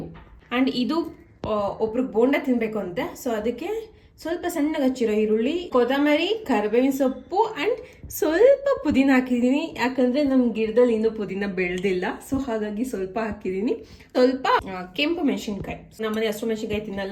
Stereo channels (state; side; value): identical; both; correlation 1.00